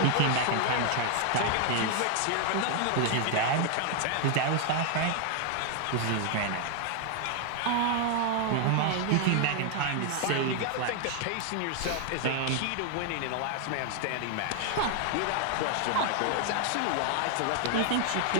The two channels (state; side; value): different; both; correlation 0.00